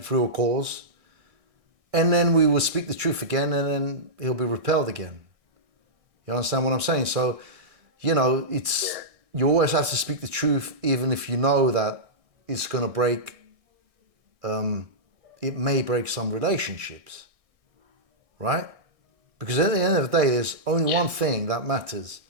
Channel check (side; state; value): left; late; 1.6 ms